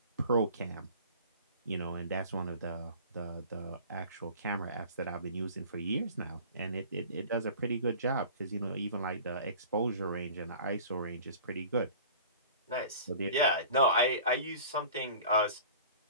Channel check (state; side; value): inverted; both; correlation -0.44